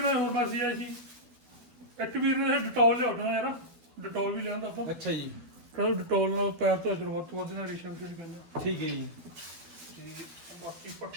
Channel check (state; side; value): late; left; 12 ms